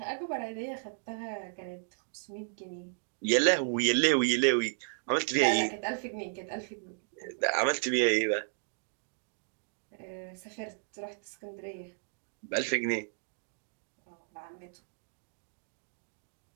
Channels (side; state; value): left; silent; digital silence